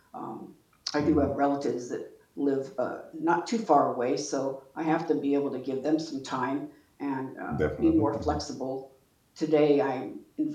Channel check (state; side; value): identical; both; correlation 1.00